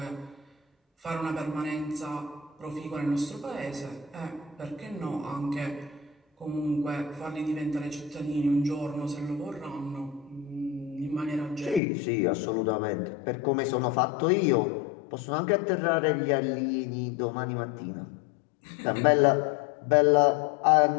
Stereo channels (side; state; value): right; drops out; at 11.8 s